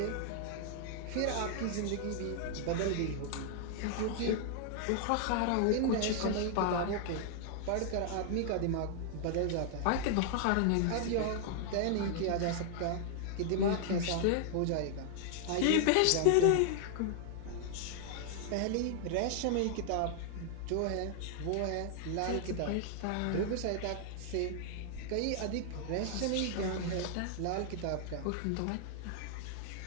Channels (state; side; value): different; both; correlation 0.00